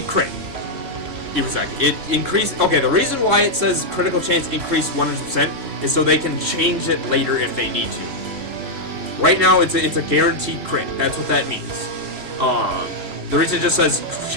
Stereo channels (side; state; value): left; late; 2.9 ms